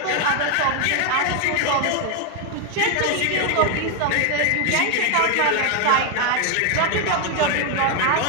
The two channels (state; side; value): different; both; correlation 0.01